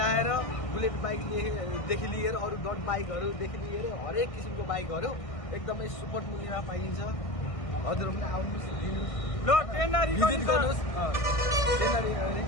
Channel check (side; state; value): right; late; 1.5 ms